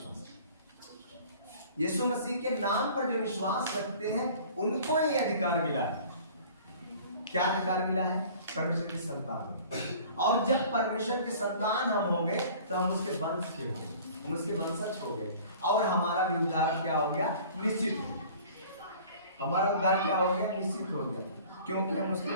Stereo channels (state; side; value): inverted; both; correlation -0.47